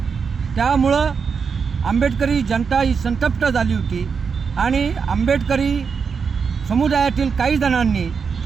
त्यामुळं आंबेडकरी जनता ही संतप्त झाली होती आणि आंबेडकरी समुदायातील काही जणांनी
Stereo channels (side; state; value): left; quieter; 5.8 dB